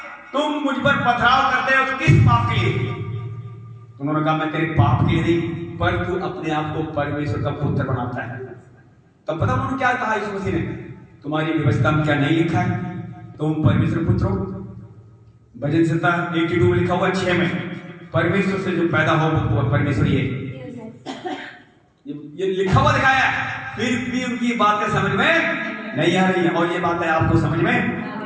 तुम मुझ पर पथराव करते हो तो किस पाप के लिए? उन्होंने कहा, मैं तेरे पाप के लिए नहीं, पर तू अपने आप को परमेश्वर का पुत्र बनाता है। तब पता उन्होंने क्या कहा यीशु मसीह ने? तुम्हारी व्यवस्था में क्या नहीं लिखा है तुम परमेश्वर पुत्र हो? भजन संहिता 82 में लिखा हुआ 6 में, परमेश्वर से जो पैदा हो वो परमेश्वर ही है। ये लिखा हुआ दिखाया है, फिर भी उनकी बातें समझ में नहीं आ रही है। और ये बातें आपको समझ में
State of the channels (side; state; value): both; identical; correlation 1.00